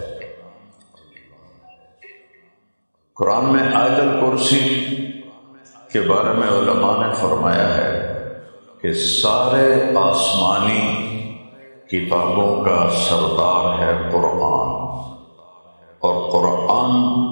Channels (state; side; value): inverted; both; correlation -1.00